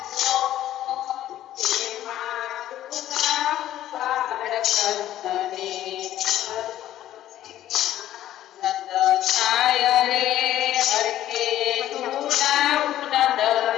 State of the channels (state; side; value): quieter; right; 12.8 dB